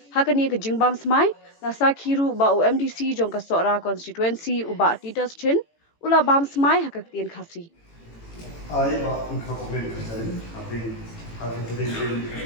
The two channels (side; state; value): right; late; 18 ms